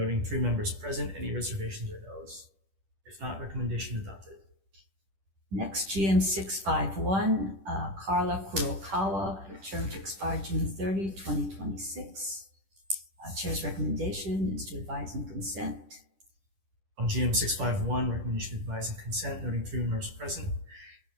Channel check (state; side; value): late; left; 10 ms